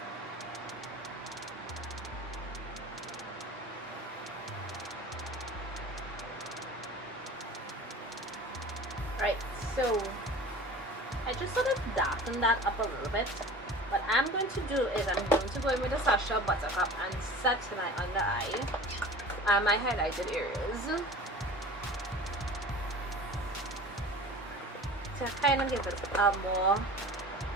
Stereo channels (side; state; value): both; normal; correlation 0.39